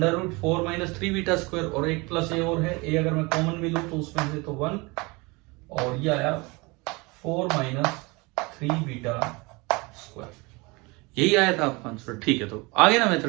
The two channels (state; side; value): quieter; left; 25.9 dB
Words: minus 3 beta square, और एक प्लस a और है, a अगर मैं कॉमन भी लूं तो उसमें से तो 1, और ये आया 4 माइनस 3 बीटा स्क्वायर। यही आया था आपका आंसर, ठीक है। तो आगे ना